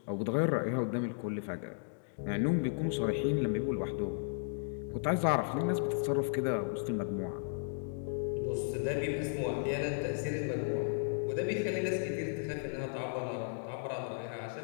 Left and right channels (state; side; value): silent; right; digital silence